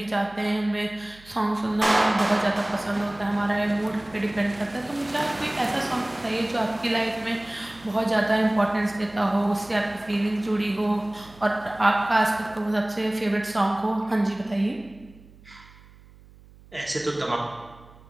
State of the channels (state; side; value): noise; right; hum, 24 dB below the sound